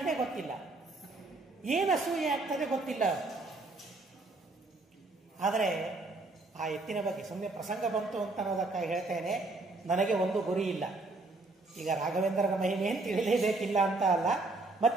ಗೊತ್ತಿಲ್ಲ, ಏನು ಅಸೂಯೆ ಆಗ್ತದೆ ಗೊತ್ತಿಲ್ಲ. ಆದರೆ ಆ ಎತ್ತಿನ ಬಗ್ಗೆ ಸುಮ್ಮನೆ ಪ್ರಸಂಗ ಬಂತು ಅಂತ ಅನ್ನೋದಕ್ಕಾಗಿ ಹೇಳ್ತೇನೆ, ನನಗೆ ಒಂದು ಗುರಿ ಇಲ್ಲ. ಈಗ ರಾಘವೇಂದ್ರನ ಮಹಿಮೆಯನ್ನು ತಿಳಿಲೇಬೇಕಿಲ್ಲ ಅಂತ ಅಲ್ಲ,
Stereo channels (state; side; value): quieter; left; 3.2 dB